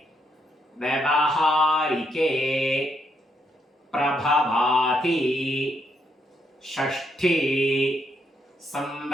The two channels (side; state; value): both; normal; correlation 0.76